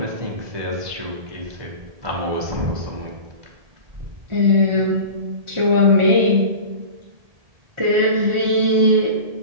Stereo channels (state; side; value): late; left; 1.7 ms